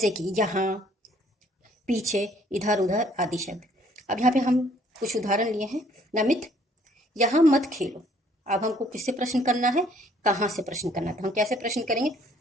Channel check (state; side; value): normal; both; correlation 0.62